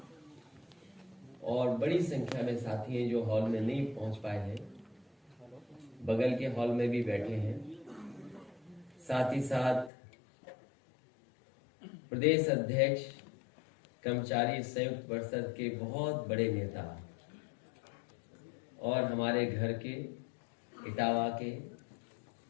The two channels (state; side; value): drops out; right; at 9.9 s